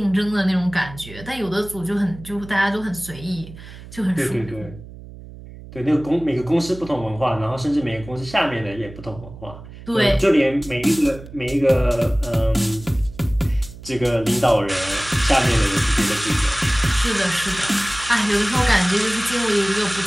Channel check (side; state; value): right; noise; hum, 16 dB below the sound